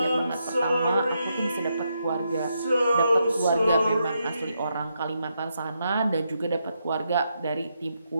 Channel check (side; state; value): both; inverted; correlation -0.81